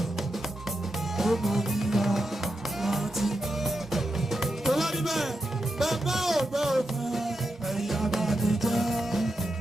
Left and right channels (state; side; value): normal; both; correlation 0.87